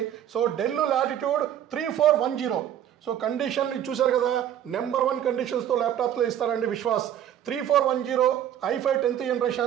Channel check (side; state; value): left; quieter; 10.5 dB